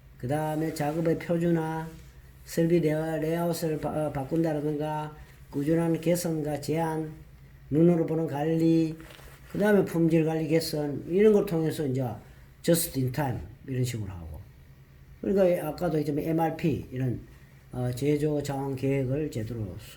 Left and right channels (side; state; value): both; identical; correlation 1.00